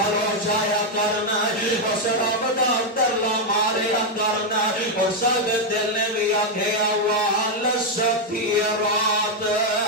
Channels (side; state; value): both; normal; correlation 0.01